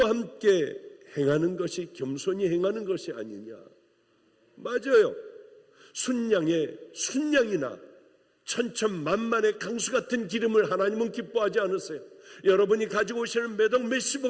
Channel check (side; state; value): both; identical; correlation 1.00